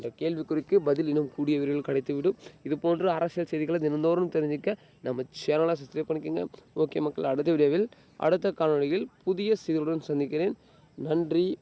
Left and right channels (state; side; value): identical; both; correlation 1.00